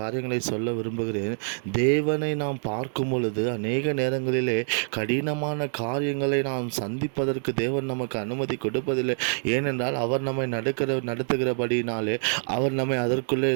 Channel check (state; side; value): silent; left; 61 dB below the other